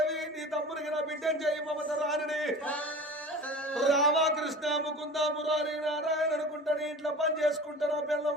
నీ తమ్మునికి నా బిడ్డను చేయి మమత రాని రామకృష్ణ ముకుంద మురారి నారాయణ అనుకుంటా నీ ఇంట్లో పని చేసుకుంటా నా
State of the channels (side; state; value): both; normal; correlation 0.37